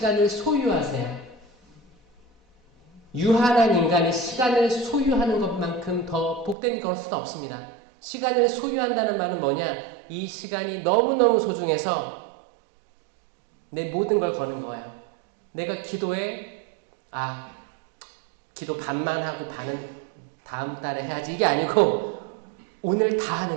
소유하세요. 유한한 인간이 시간을 소유하는 것만큼 더 복된 것은 없습니다. 시간을 소유한다는 말은 뭐냐? 이 시간이 너무너무 소중해서 내 모든 걸 거는 거예요. 내가 기도에 기도 반만 하고 반은 다음 달에 해야지, 이게 아니고 오늘 다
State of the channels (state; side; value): drops out; left; at 6.6 s